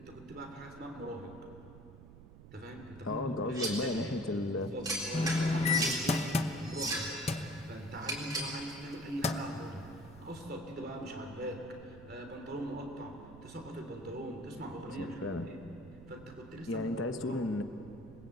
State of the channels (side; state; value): right; noise; rumble, 16 dB below the sound